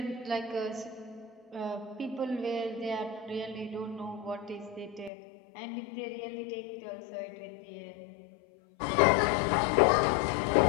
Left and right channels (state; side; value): drops out; right; at 5.1 s